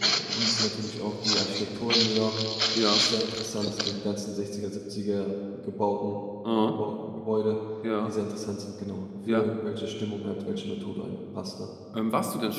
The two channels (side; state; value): both; identical; correlation 1.00